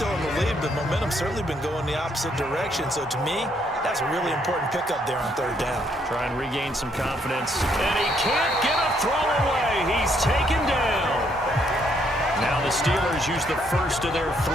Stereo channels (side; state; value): both; normal; correlation 0.71